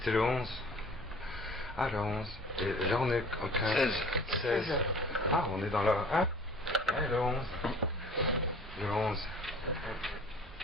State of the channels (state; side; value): normal; both; correlation 0.47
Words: le 11. Ah, le 11. Et là, on est au 15. 16. Ah, on est dans le... Ah, ouais, le 11. Le 11.